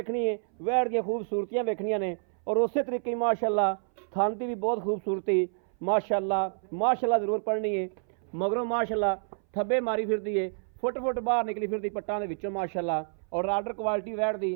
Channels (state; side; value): silent; left; 58 dB below the other